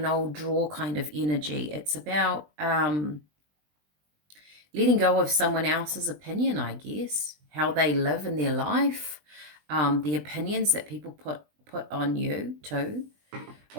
old drawer kind of energy. It's about letting go of someone else's opinion, I guess, how they live in their life, the opinions that people put on you too.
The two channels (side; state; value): left; late; 20 ms